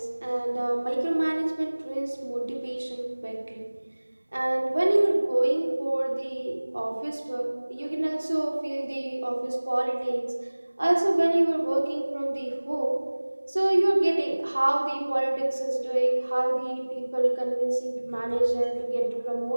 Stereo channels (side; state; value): both; inverted; correlation -1.00